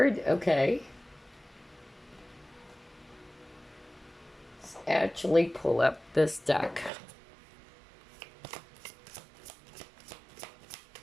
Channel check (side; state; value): left; drops out; at 6.9 s